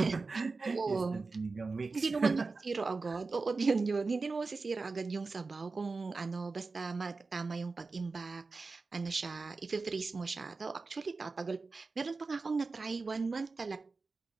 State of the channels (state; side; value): quieter; left; 4.0 dB